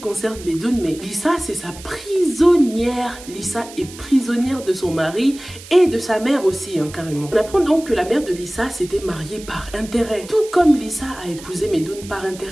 Medoun, mais Lisa, c'est sa prisonnière. Lisa est prisonnière de son mari et de sa mère aussi, carrément. On apprend donc que la mère de Lisa s'était mariée par intérêt, tout comme Lisa a épousé Medoun par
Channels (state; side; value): noise; right; hiss, 17 dB below the sound